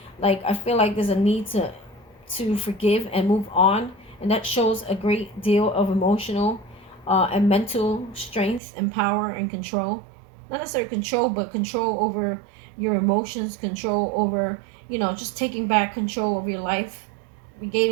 Like, I feel like there's a need to forgive and move on. And that shows a great deal of emotional and mental strength and power and control. Not necessarily control, but control over your emotions, control over, just taking back control of your life,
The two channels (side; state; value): left; drops out; at 8.6 s